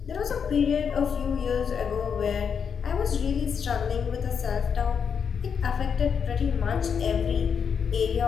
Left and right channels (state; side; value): quieter; right; 6.8 dB